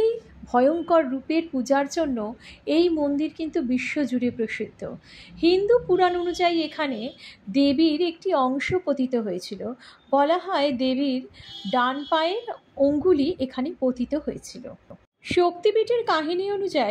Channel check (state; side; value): identical; both; correlation 1.00